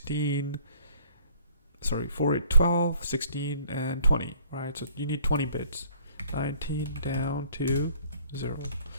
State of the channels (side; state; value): both; inverted; correlation -0.59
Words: 4, 8, 12, 16, and 20, right? So you need 20 bits. 19 down to 0.